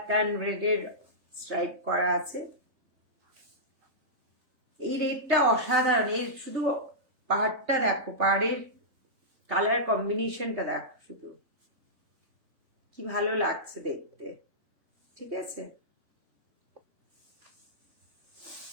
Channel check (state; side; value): late; left; 3.5 ms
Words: অ্যান্ড রেডের স্ট্রাইপ করা আছে। এই রেডটা অসাধারণ। এর শুধু পাড়টা দেখো, পাড়ের কালার কম্বিনেশনটা দেখো, শুধু কি ভালো লাগছে দেখতে, ঠিক আছে।